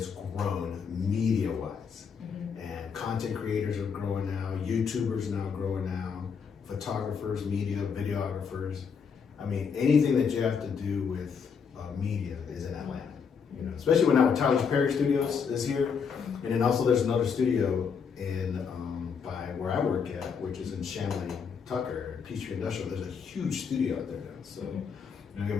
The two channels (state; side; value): quieter; right; 6.3 dB